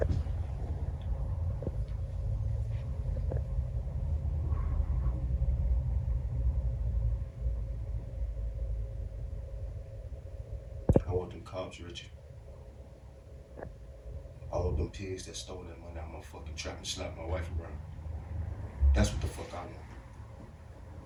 I want them cops, Richie. I all of them pigs that stole that money out my fucking trap and slapped my wife around. That's what the fuck I want.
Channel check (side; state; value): both; identical; correlation 1.00